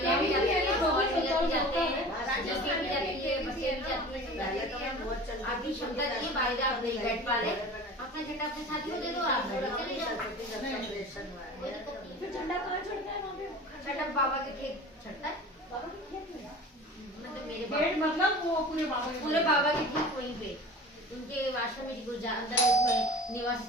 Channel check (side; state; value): both; normal; correlation 0.39